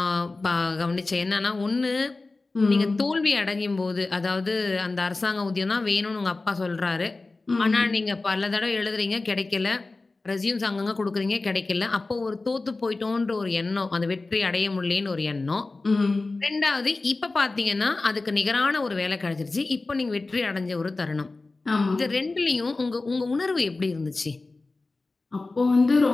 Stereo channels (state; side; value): quieter; right; 3.4 dB